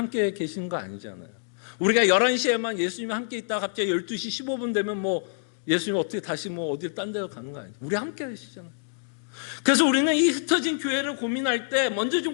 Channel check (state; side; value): silent; right; digital silence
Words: 계시는 거 아니잖아요. 우리가 11시에만 예수님 함께 있다가 갑자기 12시 15분 되면 예수님 어떻게 다시 어딜 딴 데로 가는 거 아니에요. 우리 함께 계시잖아요. 그래서 우리는 이 흩어진 교회를 고민할 때 먼저